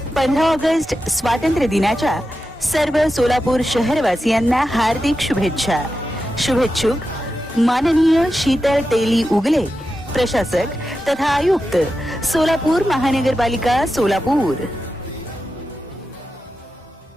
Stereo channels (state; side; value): normal; both; correlation 0.90